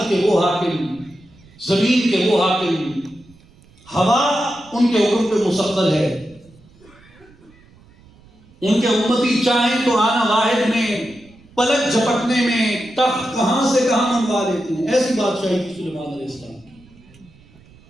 کے وہ حاکم، زمین کے وہ حاکم، ہوا ان کے حکم پہ مسخر ہے. ان کے امتی چاہیں تو آنا واحد میں، پلک جھپکنے میں تخت کہاں سے کہاں منگوا دیتے ہیں. ایسی بادشاہی تھی سلیمان علیہ السلام کی.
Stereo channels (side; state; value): right; noise; rumble, 27 dB below the sound